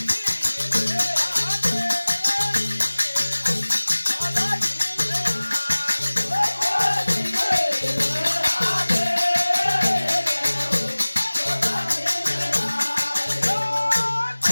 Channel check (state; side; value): inverted; both; correlation -1.00